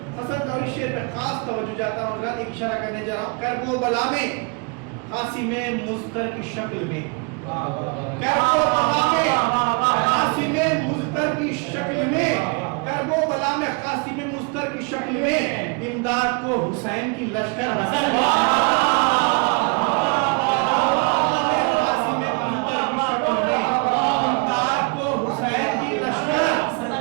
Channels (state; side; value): quieter; left; 32.0 dB